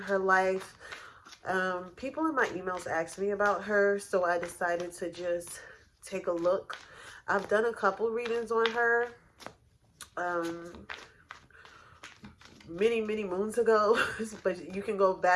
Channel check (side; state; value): both; identical; correlation 1.00